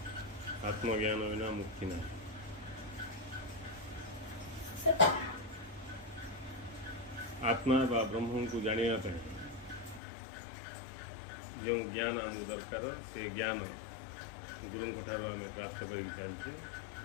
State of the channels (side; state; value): right; drops out; at 10.0 s